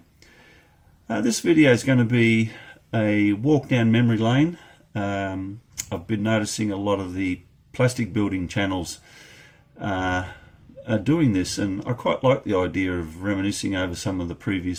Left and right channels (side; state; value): both; identical; correlation 1.00